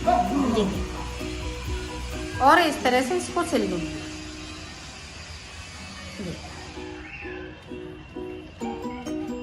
ये देखो, और इस तरह से इसको सिल लूंगी।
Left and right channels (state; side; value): identical; both; correlation 1.00